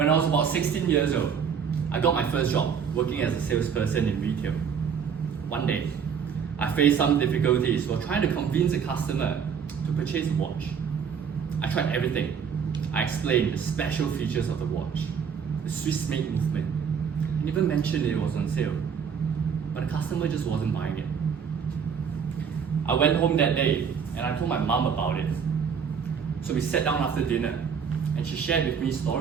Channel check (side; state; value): left; quieter; 6.9 dB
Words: I was about 16 years old, I got my first job working as a salesperson in retail. One day, I faced some difficulties while trying to convince a customer to purchase a watch. I tried everything. I explained the special features of the watch, the Swiss made movement, and even mentioned it was on sale. But the customer just wasn't buying it. I went home that day and I told my mom about it. So we sat down after dinner and she shared with me